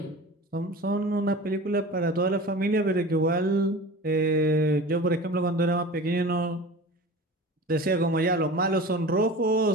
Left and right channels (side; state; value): both; normal; correlation 0.35